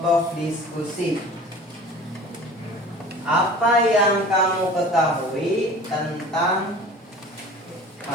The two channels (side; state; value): both; normal; correlation 0.42